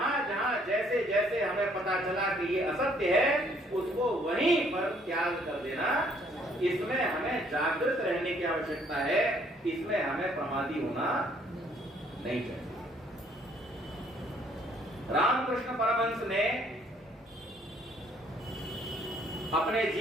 जहां जैसे जैसे हमें पता चला कि ये असत्य है उसको वहीं पर त्याग कर देना। इसमें हमें जागृत रहने की आवश्यकता है, इसमें हमें प्रमादी होना नहीं चाहिए। रामकृष्ण परमहंस ने अपने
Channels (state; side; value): normal; both; correlation 0.64